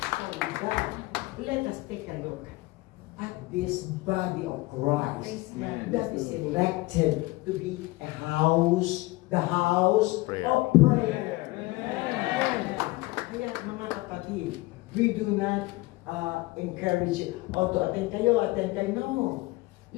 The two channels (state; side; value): quieter; right; 21.1 dB